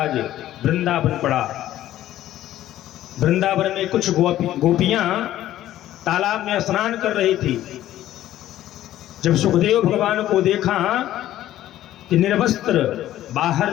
वृंदावन पड़ा। वृंदावन में कुछ गोपियां तालाब में स्नान कर रही थी। जब सुखदेव भगवान को देखा कि निर्वस्त्र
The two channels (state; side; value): quieter; right; 13.4 dB